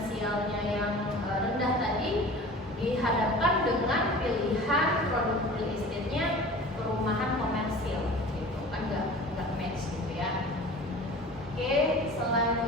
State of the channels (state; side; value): normal; both; correlation 0.40